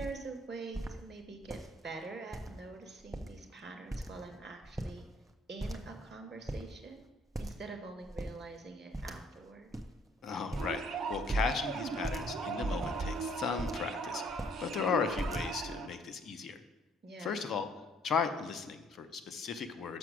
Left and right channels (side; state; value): both; normal; correlation 0.62